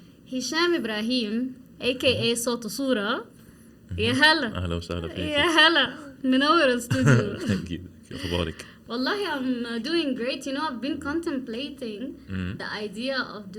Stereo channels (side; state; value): both; identical; correlation 1.00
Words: Hisham Ibrahim, aka Sotusura. يا هلا أهلا وسهلا فيك. يا هلا منور الاستوديو. Thank you. كيف أخبارك؟ Wallahi, I'm doing great. You know, I've been contemplating the idea of